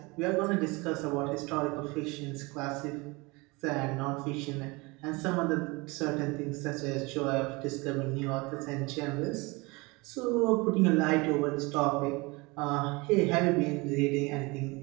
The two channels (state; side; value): quieter; left; 25.4 dB